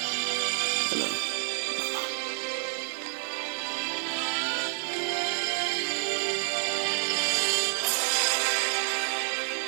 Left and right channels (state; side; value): silent; left; digital silence